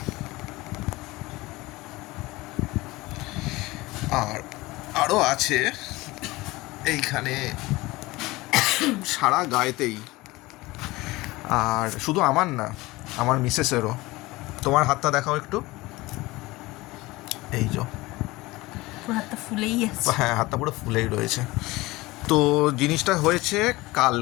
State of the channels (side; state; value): right; quieter; 20.5 dB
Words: আর আরও আছে এইখানে সারা গায়েতেই। আর শুধু আমার না, আমার মিসেসেরও। তোমার হাতটা দেখাও একটু। এই যে হাতটা ফুলেই আছে। হ্যাঁ, হাতটা পুরো ফুলেই রয়েছে। তো জিনিসটা হয়েছে